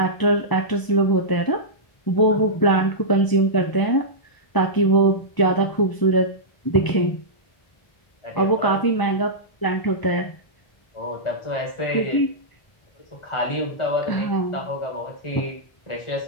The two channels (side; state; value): right; late; 1.0 ms